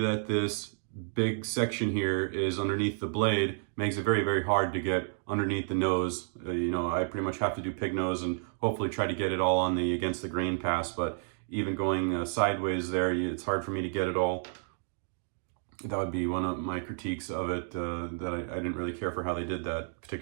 this big section here is underneath the blade makes it very, very hard to get underneath the nose. You know, I pretty much have to do pig nose and hopefully try to get it all on the against the grain pass, but even going sideways there, it's hard for me to get it all. That would be one of my critiques of it, that I didn't really care for how they did that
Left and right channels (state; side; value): silent; left; digital silence